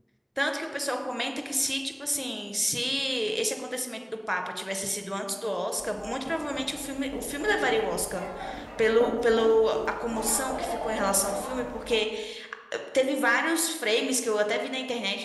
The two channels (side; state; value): both; identical; correlation 1.00